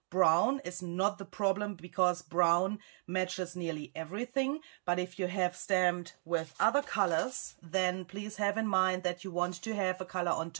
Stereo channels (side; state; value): left; silent; 55 dB below the other